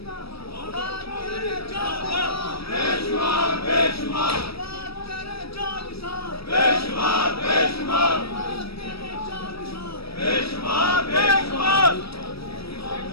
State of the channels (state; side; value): late; right; 0.76 ms